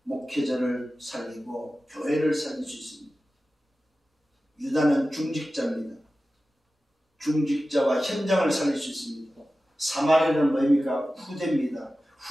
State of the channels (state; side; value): normal; both; correlation 0.95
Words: 목회자를 살리고 교회를 살릴 수 있습니다. 유다는 중직자입니다. 중직자와 현장을 살릴 수 있습니다. 사마리아는 뭐입니까? 후대입니다.